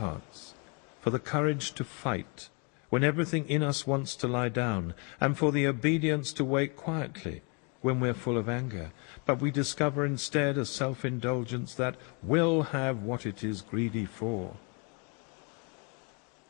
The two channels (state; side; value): quieter; right; 34.3 dB